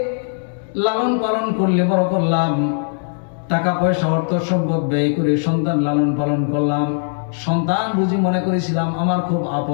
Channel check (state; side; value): silent; right; digital silence